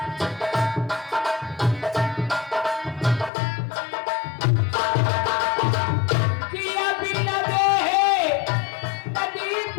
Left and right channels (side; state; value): right; drops out; at 3.3 s